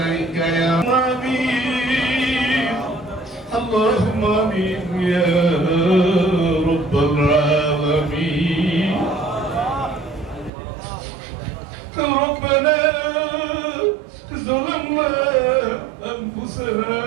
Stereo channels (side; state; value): left; drops out; at 10.5 s